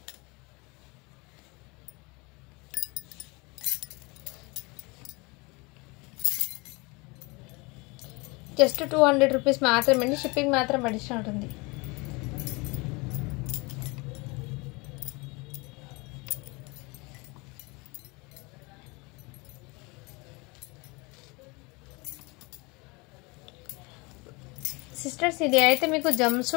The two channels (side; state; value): right; quieter; 26.6 dB